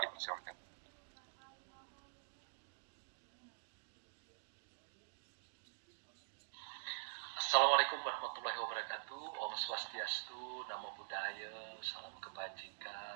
dipersilakan. Assalamualaikum warahmatullahi wabarakatuh. Om Swastiastu, Namo Buddhaya, salam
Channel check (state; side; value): silent; left; digital silence